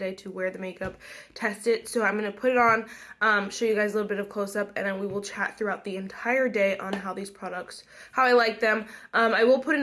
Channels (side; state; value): both; identical; correlation 1.00